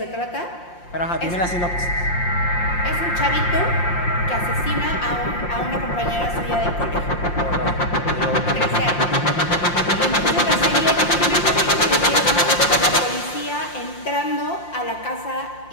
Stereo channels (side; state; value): right; late; 5.7 ms